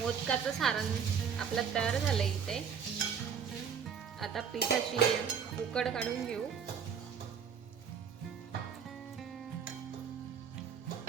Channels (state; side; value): quieter; left; 7.1 dB